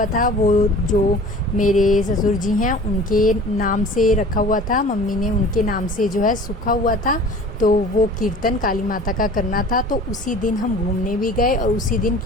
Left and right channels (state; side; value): normal; both; correlation 0.44